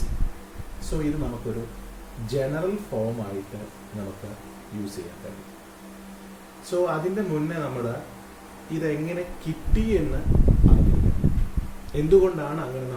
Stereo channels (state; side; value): identical; both; correlation 1.00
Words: സോ ഇത് നമുക്കൊരു ജനറൽ ഫോം ആയിട്ട് നമുക്ക് യൂസ് ചെയ്യാൻ കഴിയും. സോ അതിൻ്റെ മുന്നേ നമ്മൾ ഇതെങ്ങനെ കിട്ടി എന്ന് അറിയിക്കണം. എന്തുകൊണ്ടാണ് അങ്ങനെ